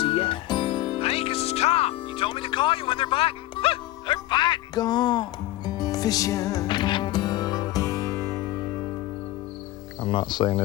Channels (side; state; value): right; quieter; 16.3 dB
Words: he at? Hank, this is Tom. You told me to call you when they're biting. They're biting. Gone fishing. I'm not saying